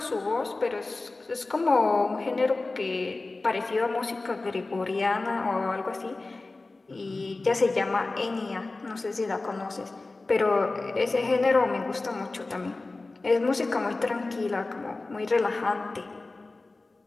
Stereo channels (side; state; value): right; quieter; 3.3 dB